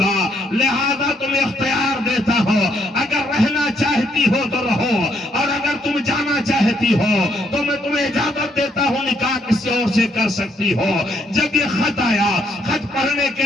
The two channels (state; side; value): normal; both; correlation 0.72